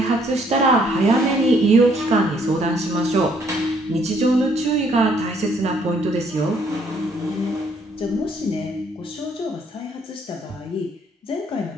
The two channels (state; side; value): normal; both; correlation 0.66